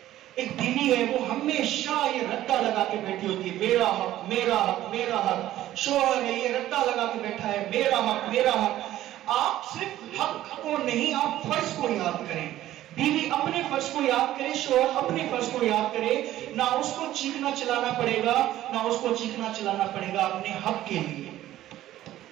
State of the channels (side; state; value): left; quieter; 13.8 dB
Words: ایک بیوی ہے وہ ہمیشہ یہ رٹا لگا کے بیٹھی ہوتی ہے, میرا حق میرا حق میرا حق. شوہر ہے یہ رٹا لگا کے بیٹھا ہے, میرا حق میرا حق. آپ صرف حق کو نہیں, آپ فرض کو یاد کریں. بیوی اپنے فرض کو یاد کرے, شوہر اپنے فرض کو یاد کرے. نہ اس کو چیخنا چلانا پڑے گا, نہ اس کو چیخنا چلانا پڑے گا اپنے حق کے لیے.